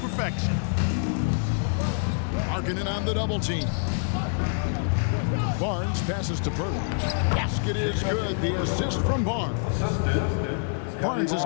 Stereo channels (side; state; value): right; silent; 61 dB below the other